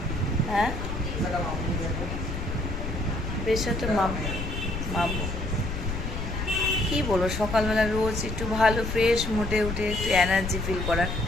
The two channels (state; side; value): noise; left; rumble, 4 dB below the sound